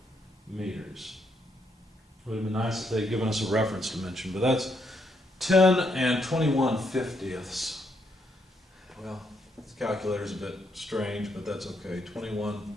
meters. It would have been nice if they'd given us a reference dimension, but that's 10 and 21/50ths. Well, this calculator's a bit strange, but that's okay.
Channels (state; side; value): normal; both; correlation 0.75